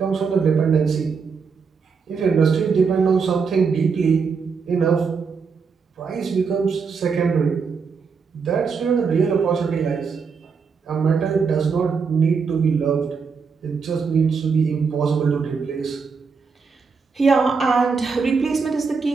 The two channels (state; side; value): quieter; left; 5.4 dB